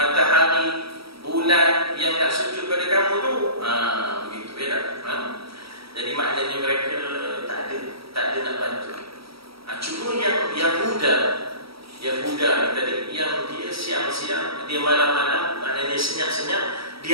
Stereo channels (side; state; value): left; late; 0.76 ms